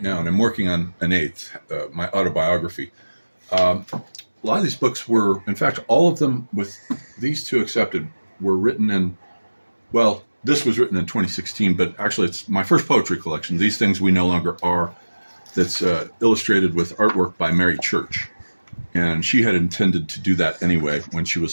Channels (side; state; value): both; inverted; correlation -1.00